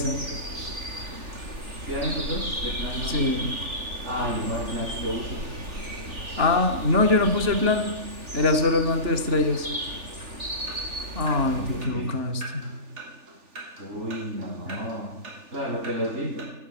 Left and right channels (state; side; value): late; left; 3.4 ms